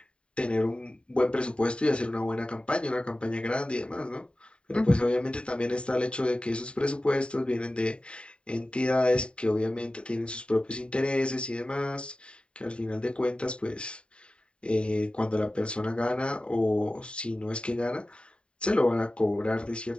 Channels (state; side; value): late; right; 0.054 ms